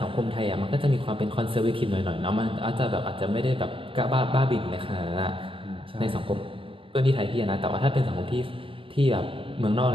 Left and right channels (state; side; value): late; left; 0.26 ms